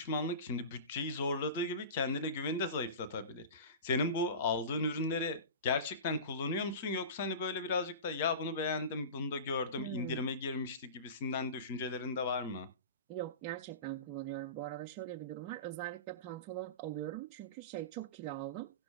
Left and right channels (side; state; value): both; inverted; correlation -0.31